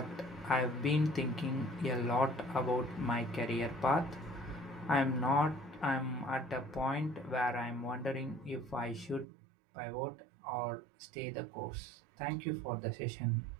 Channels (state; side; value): drops out; left; at 9.2 s